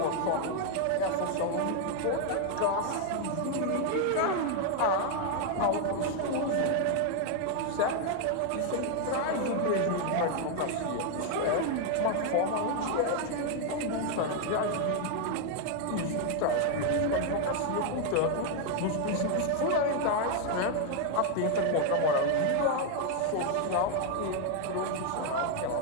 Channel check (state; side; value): different; both; correlation 0.00